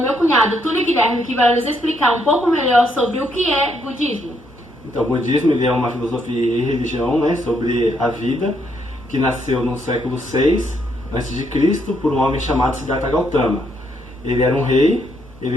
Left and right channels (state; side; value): normal; both; correlation 0.74